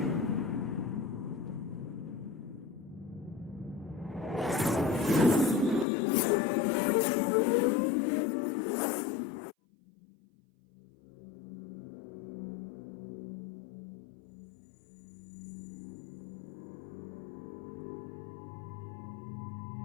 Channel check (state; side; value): drops out; right; at 5.9 s